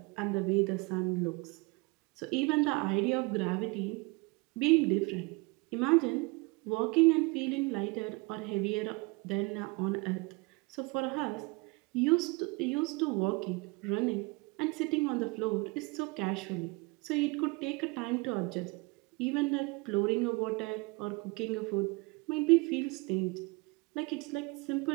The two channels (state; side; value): quieter; left; 26.5 dB